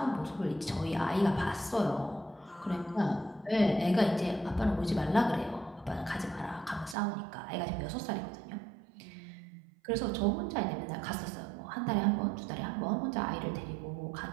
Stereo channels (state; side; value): drops out; left; at 7.0 s